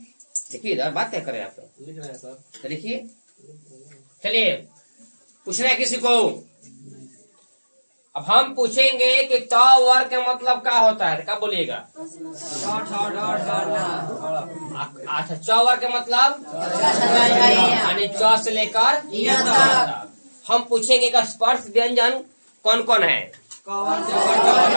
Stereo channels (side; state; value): both; inverted; correlation -1.00